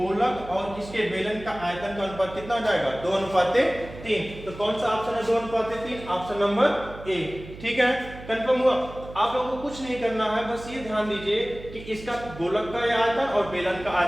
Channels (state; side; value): noise; right; hum, 15 dB below the sound